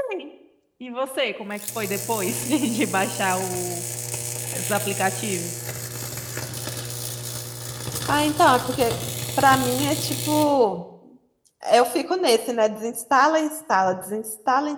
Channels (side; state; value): both; identical; correlation 1.00